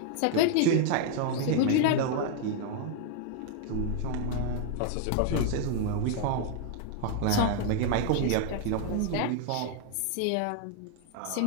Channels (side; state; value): both; different; correlation 0.00